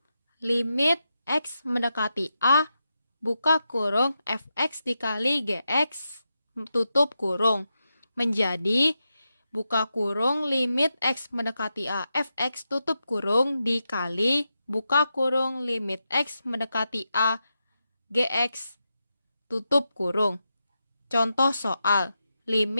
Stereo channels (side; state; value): both; inverted; correlation -0.88